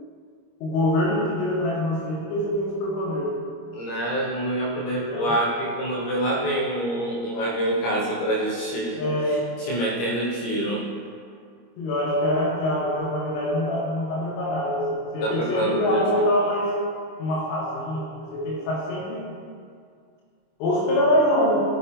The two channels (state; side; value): late; right; 25 ms